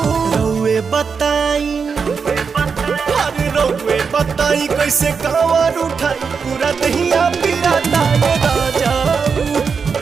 रउए बताई अरे रउए बताई कैसे कांवर उठाई पूरा दहिया पिराता है राजाऊ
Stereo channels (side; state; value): left; quieter; 5.7 dB